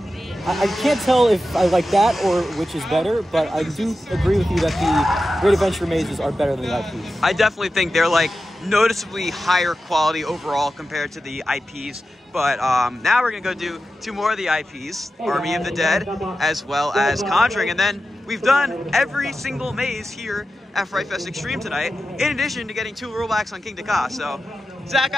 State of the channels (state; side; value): normal; both; correlation 0.92